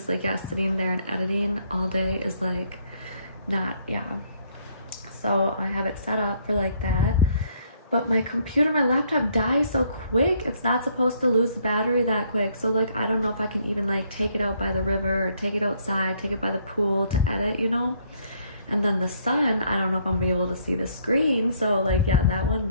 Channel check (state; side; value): inverted; both; correlation -0.67